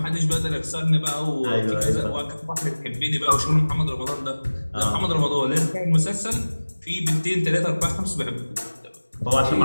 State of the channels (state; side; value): inverted; both; correlation -1.00